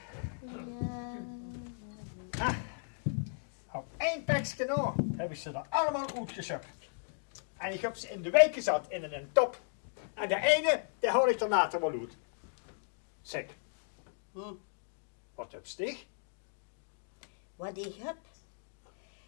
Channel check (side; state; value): right; silent; digital silence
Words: Ja. Op één pakje nou heb ik ze er allemaal uitgezocht. En ik heb ze in de week gezet in een top. En de ene, die hou ik er later wel uit. Zeg, wat heb je? Wat ik heb?